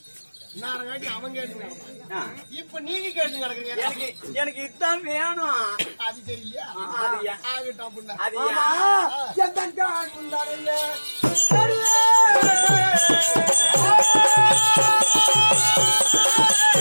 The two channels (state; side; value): inverted; both; correlation -1.00